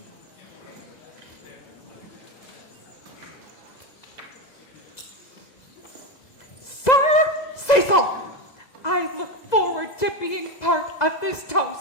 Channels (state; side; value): late; right; 2.0 ms